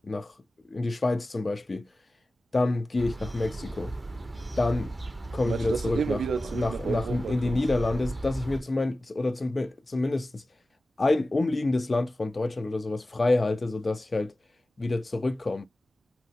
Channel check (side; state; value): both; normal; correlation 0.95